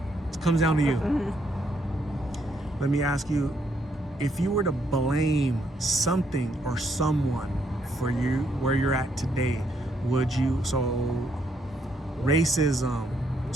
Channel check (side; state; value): both; normal; correlation 0.74